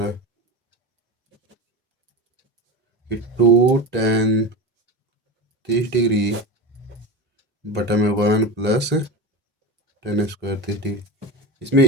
है कि 2 tan 30 डिग्री बटा में 1 प्लस tan स्क्वायर 30 डिग्री।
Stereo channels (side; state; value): both; normal; correlation 0.25